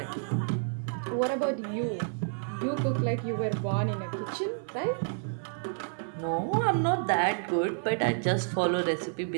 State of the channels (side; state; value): left; silent; digital silence